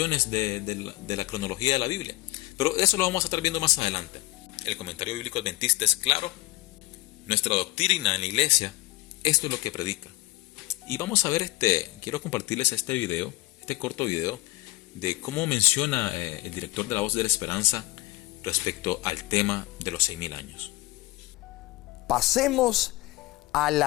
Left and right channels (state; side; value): quieter; right; 18.8 dB